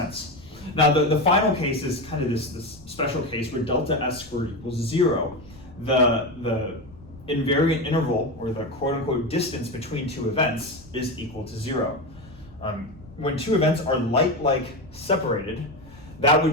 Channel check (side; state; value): left; noise; rumble, 21 dB below the sound